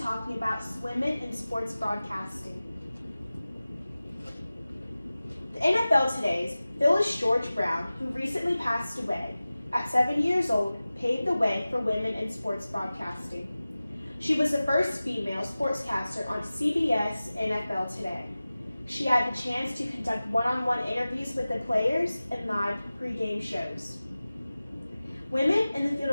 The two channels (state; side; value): inverted; both; correlation -0.97